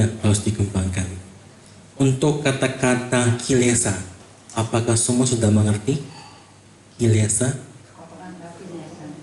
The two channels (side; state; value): both; identical; correlation 1.00